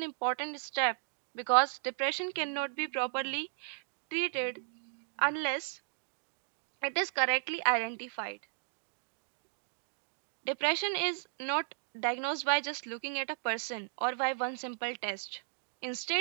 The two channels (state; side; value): silent; left; digital silence